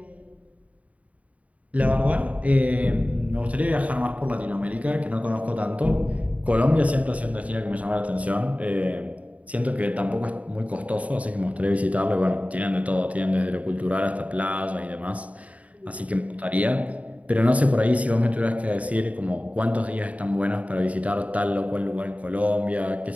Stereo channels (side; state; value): left; late; 0.068 ms